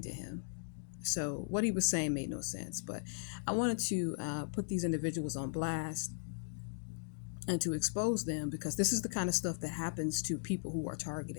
to him. So what he was saying made no sense. But I wanted to put these individuals on blast and to expose them, because this is the kind of stuff that happens to people who are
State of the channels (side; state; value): right; silent; digital silence